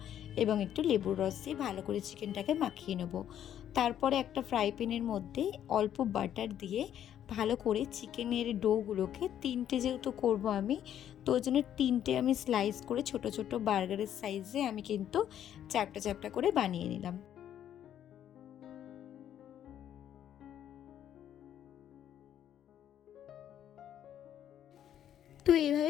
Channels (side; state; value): right; quieter; 10.4 dB